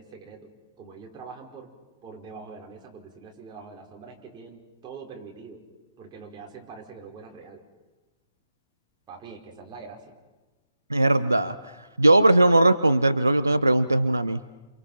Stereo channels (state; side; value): inverted; both; correlation -0.93